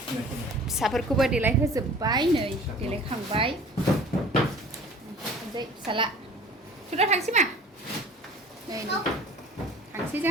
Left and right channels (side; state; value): both; normal; correlation 0.46